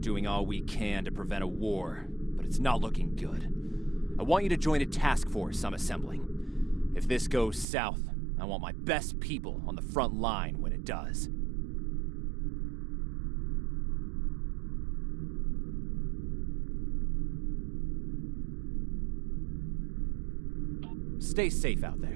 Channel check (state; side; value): drops out; left; at 7.7 s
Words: all we can to prevent a war, but it's not looking good. I want you to join a task force I'm assembling. If this goes south, I want my best people on the front line when it does. Stay safe out